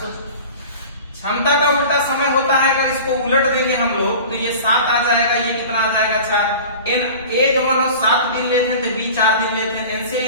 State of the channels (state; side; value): inverted; both; correlation -0.38